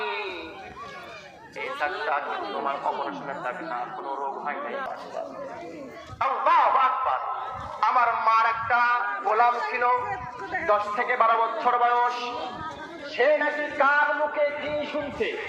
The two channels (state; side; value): identical; both; correlation 1.00